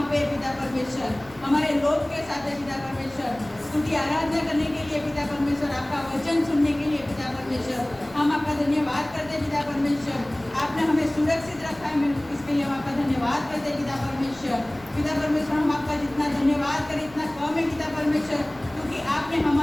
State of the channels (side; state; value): left; noise; rumble, 23 dB below the sound